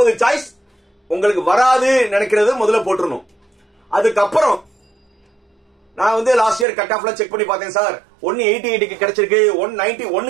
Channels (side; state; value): left; drops out; at 6.7 s